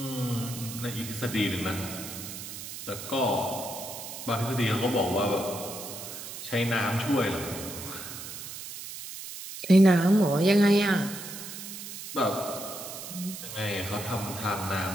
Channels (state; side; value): noise; right; hiss, 10 dB below the sound